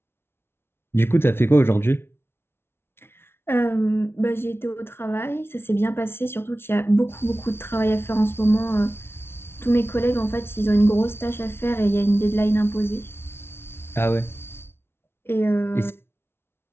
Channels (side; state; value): right; late; 0.12 ms